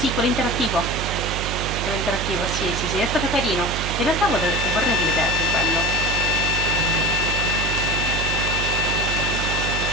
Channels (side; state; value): right; noise; hum, 4 dB below the sound